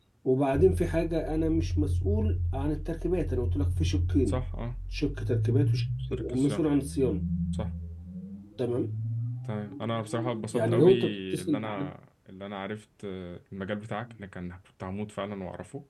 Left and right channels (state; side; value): identical; both; correlation 1.00